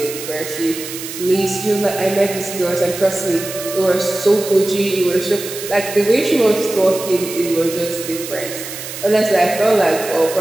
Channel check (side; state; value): right; noise; hiss, 9 dB below the sound